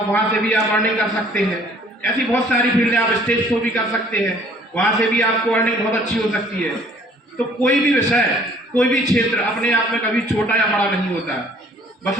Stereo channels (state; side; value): normal; both; correlation 0.56